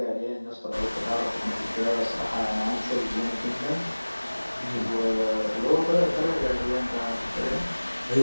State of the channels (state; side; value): inverted; both; correlation -1.00